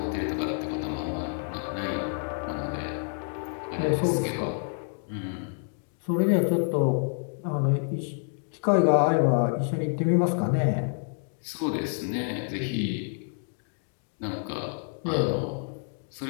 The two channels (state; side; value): silent; right; 59 dB below the other